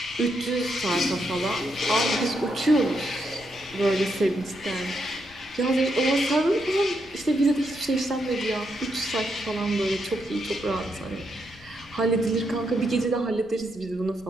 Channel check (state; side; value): noise; left; rumble, 24 dB below the sound